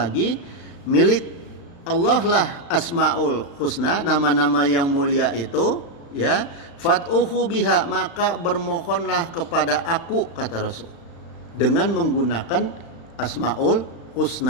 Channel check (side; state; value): right; late; 35 ms